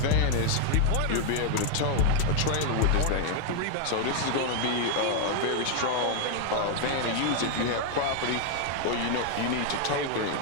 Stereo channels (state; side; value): different; both; correlation 0.00